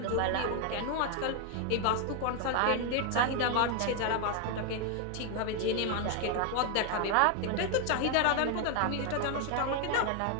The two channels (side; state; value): both; different; correlation 0.00